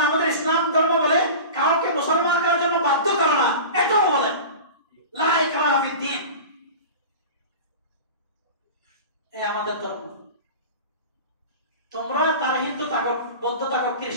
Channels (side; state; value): both; inverted; correlation -0.33